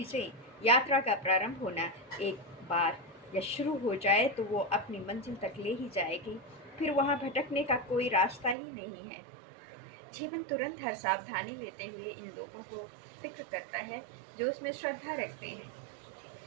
यात्रा का प्रारंभ होना एक बार या शुरू हो जाए तो वो अपनी मंजिल तक ले ही जाएगी, फिर वहाँ भटकने का कोई रास्ता ही नहीं है। जीवन तुरंत हर सावधानी लेते हुए इन लोगों को फिक्र करता है जो उसमें श्रद्धा रखते हैं।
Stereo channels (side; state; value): left; drops out; at 8.6 s